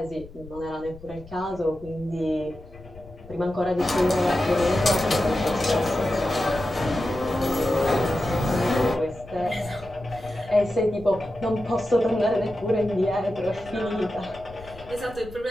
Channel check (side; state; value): left; noise; rumble, 19 dB below the sound